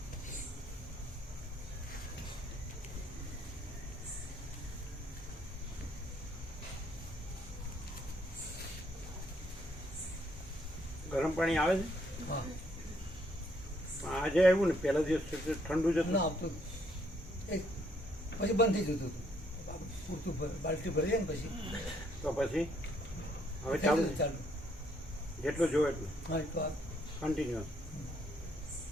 ગરમ પાણી આવે છે આજે આવ્યું ને પહેલા દિવસ ઠંડુ જ હતું. ના આવતું પછી બંધ થઈ જતું હતું પૂરતું બાલ્ટી ભરી જાય ને પછી તો પછી હવે ચાલુ ચાલુ જેટલું જોવે એટલું હા તો કન્ટિન્યુઅસ.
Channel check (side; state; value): both; normal; correlation 0.69